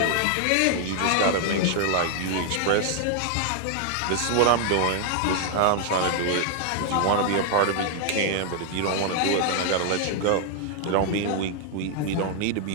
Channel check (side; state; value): both; different; correlation 0.00